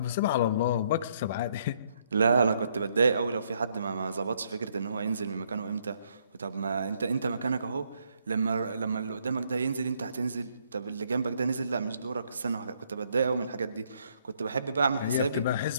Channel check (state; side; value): inverted; both; correlation -0.71